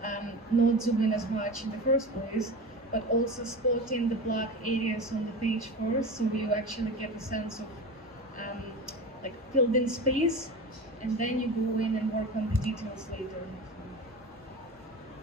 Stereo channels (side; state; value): both; normal; correlation 0.29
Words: not zoom in as much in the first place, but also spotting the black areas on the page first, so you actually get a sense of like filled in space, and then you go in and work on the details later.